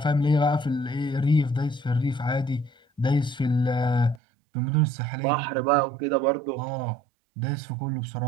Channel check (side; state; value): left; drops out; at 4.2 s